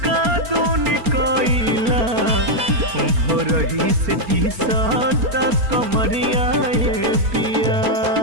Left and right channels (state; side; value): late; left; 4.3 ms